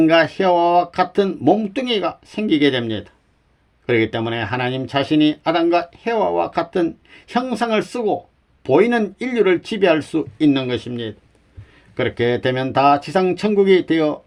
헤와와 같은 몸뚱이가 생기게 됩니다. 그렇기 때문에 하나님 자신이 아담과 헤와와 같은 형상을 쓰고 보이는 인류를 지배할 수 있는 것입니다. 그렇게 되면 다 지상 천국이 되어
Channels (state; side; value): identical; both; correlation 1.00